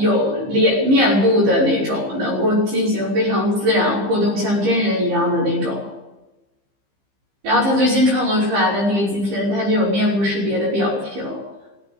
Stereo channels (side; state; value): left; late; 15 ms